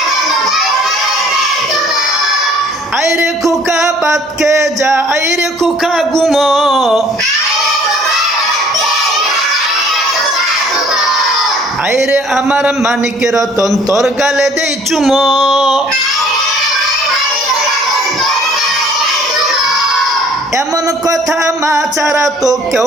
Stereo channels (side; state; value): both; normal; correlation 0.56